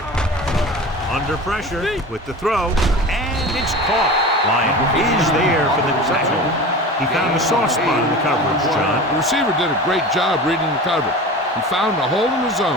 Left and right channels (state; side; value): normal; both; correlation 0.34